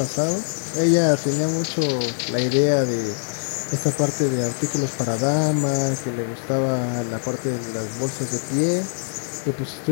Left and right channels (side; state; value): right; silent; 63 dB below the other